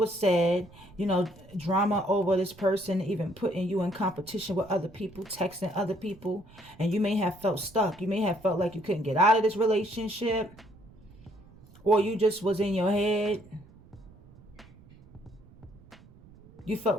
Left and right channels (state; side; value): noise; right; rumble, 23 dB below the sound